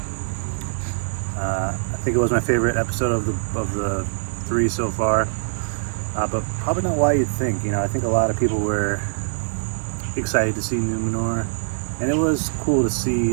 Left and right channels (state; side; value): silent; left; digital silence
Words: I think it was my favorite episode of the 3 so far, but probably not why you'd think. I think a lot of people were excited to see Numenor, and it was cool to